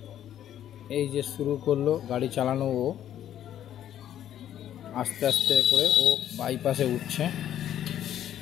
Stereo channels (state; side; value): quieter; right; 11.0 dB